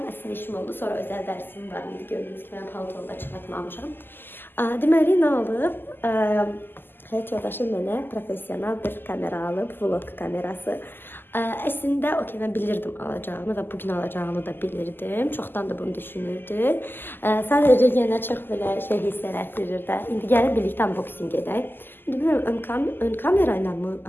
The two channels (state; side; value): late; right; 0.096 ms